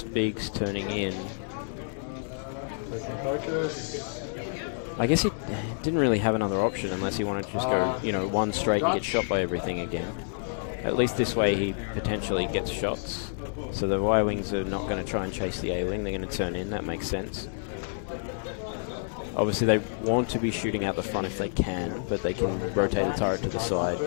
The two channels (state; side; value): silent; right; digital silence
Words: Biggs turning in. Focus. I guess he didn't really have another option unless he wanted to just go, one straight and get shot by everything again. Yeah. At least this way he potentially gets shots. So the Y-wings are not going to try and chase the A-wing. They're going to turn in. That makes sense. Obviously, they want to be shooting out the front if they can, but they can rotate the turret to the side